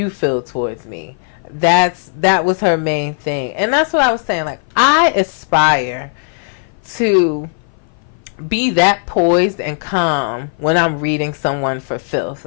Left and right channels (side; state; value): right; silent; 57 dB below the other